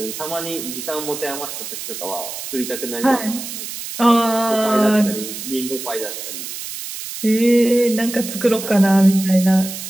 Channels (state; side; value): noise; right; hiss, 8 dB below the sound